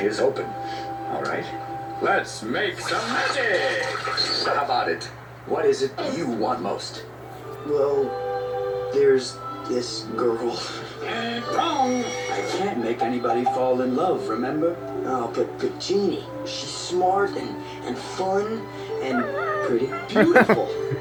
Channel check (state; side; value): identical; both; correlation 1.00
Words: open. All right. Let's make some magic. So how about it? What is it you want most? Well, there's this girl. Wrong. I can't make anybody fall in love, remember? Oh, but Jeannie, she's smart and fun and pretty beautiful.